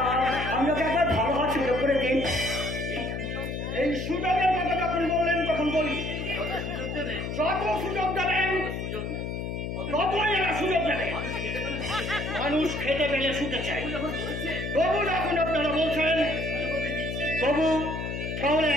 আপনাকে একবার ভালো হওয়ার সুযোগ করে দিন। এই সুযোগের কথা যখন বললেন তখন বলি, যত সুযোগ দেবেন ততই এরা সুযোগ দেবে। মানুষ খেতে পেলে শুতে চায়। তবু যখন আপনারা বলছেন তবু, তাহলে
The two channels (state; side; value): noise; left; hum, 4 dB below the sound